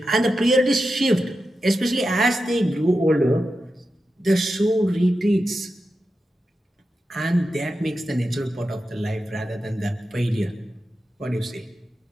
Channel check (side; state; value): both; normal; correlation 0.90